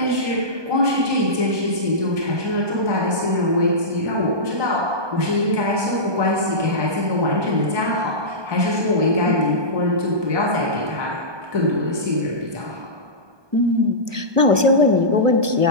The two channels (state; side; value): late; left; 1.2 ms